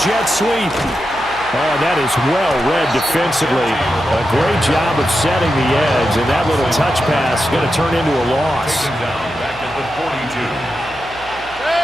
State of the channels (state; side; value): noise; left; hum, 21 dB below the sound